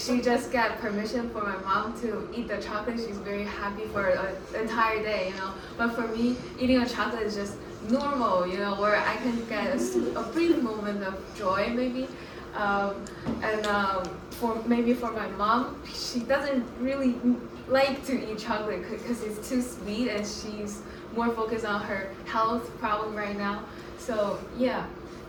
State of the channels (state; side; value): identical; both; correlation 1.00